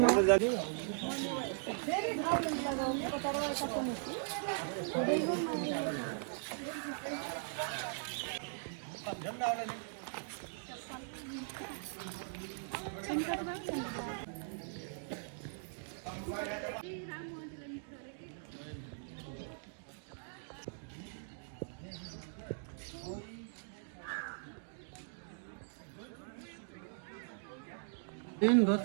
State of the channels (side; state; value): left; silent; digital silence